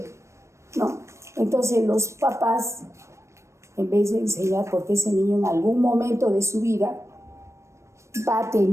¿no? Entonces los papás, en vez de enseñar, porque ese niño en algún momento de su vida va a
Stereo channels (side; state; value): left; late; 0.14 ms